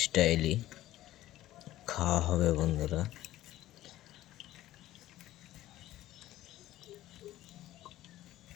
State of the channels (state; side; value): quieter; right; 14.8 dB